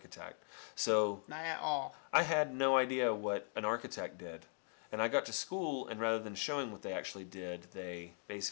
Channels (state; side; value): silent; right; 51 dB below the other